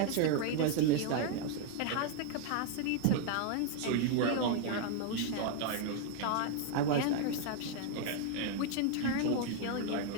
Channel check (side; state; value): both; different; correlation 0.00